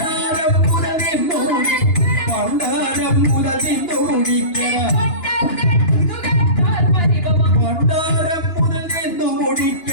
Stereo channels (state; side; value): late; right; 2.9 ms